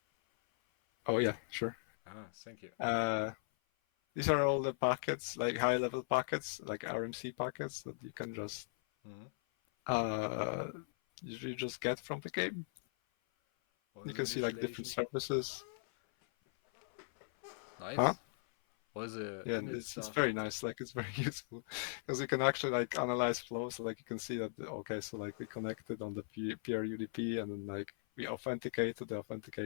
Oh yeah, sure. Ah, thank you. Uh, these are all the packets, like high-level packets, like RMC packets that you can just Hmm. uh, you just get from the game. All You the can see like different initialization. services. Huh? Nice. All the Yeah, init it's stuff. very nice. Like it's very useful because you can actually like analyze flows. So like you can see that okay, so like we connected on the PRUDP and then like we authenticate to the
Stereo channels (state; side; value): silent; right; 52 dB below the other